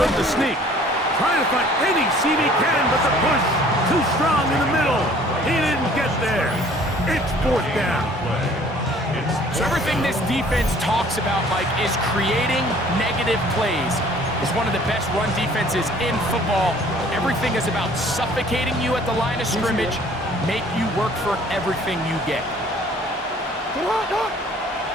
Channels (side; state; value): both; normal; correlation 0.54